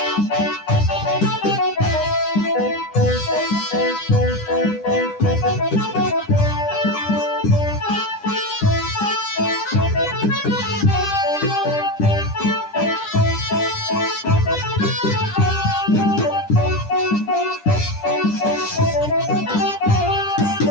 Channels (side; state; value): right; late; 9.9 ms